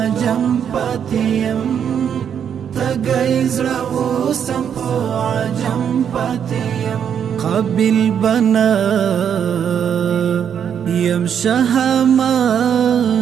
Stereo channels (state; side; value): quieter; left; 8.3 dB